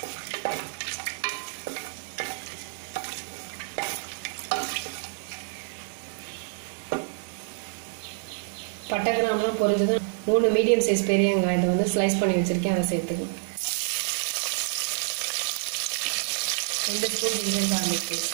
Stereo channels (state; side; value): silent; left; digital silence